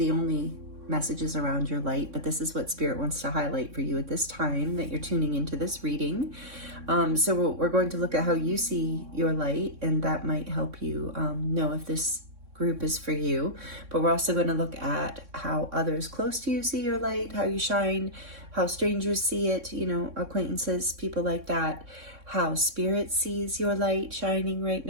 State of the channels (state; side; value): late; left; 3.6 ms